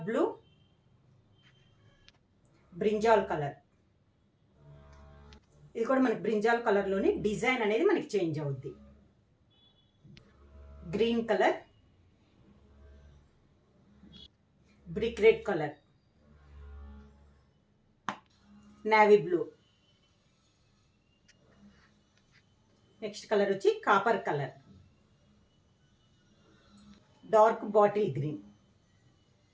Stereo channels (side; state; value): both; identical; correlation 1.00